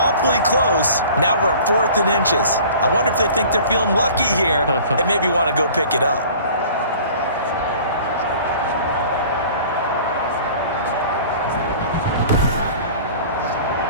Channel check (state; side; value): inverted; both; correlation -0.46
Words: close. Now we're at 4th and inches. I wonder if they think they're feeling lucky here and maybe want to go pick it up.